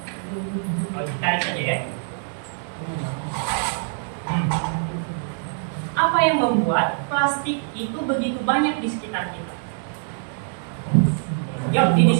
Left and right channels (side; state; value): left; silent; digital silence